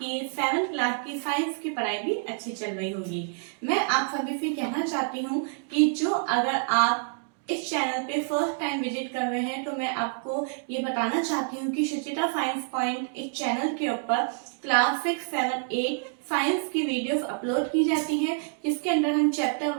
7th क्लास की साइंस की पढ़ाई भी अच्छी चल रही होगी। मैं आप सभी से कहना चाहती हूँ कि जो अगर आप इस चैनल पे फर्स्ट टाइम विजिट कर रहे हैं तो मैं आपको ये बताना चाहती हूँ कि सुचिता साइंस पॉइंट इस चैनल के ऊपर क्लास 6, 7, 8 साइंस की वीडियोस अपलोड की जाती हैं, जिसके अंदर हम चैप्टर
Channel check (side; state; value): left; silent; digital silence